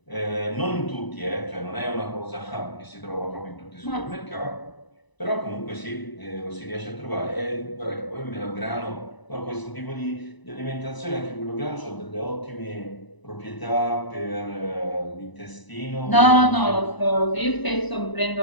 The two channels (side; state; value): right; late; 1.0 ms